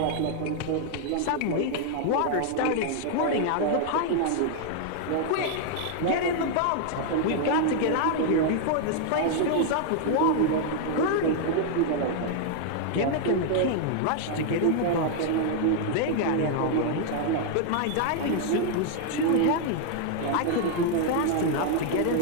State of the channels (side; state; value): both; different; correlation 0.00